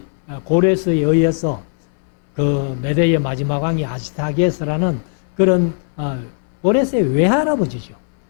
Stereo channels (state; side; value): silent; right; 66 dB below the other